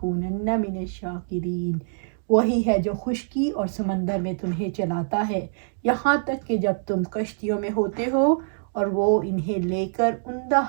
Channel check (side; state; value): left; silent; digital silence